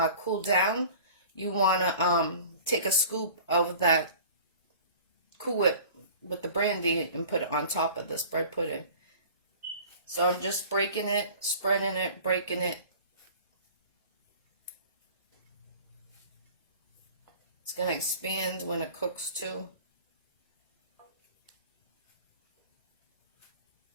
cooled down, you want to take a scoop of that Cool Whip with the brandy and put it on top of this bread pudding. So I'm just breaking it, spreading it, breaking it. It's going to expand when it cooks too.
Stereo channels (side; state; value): both; inverted; correlation -0.44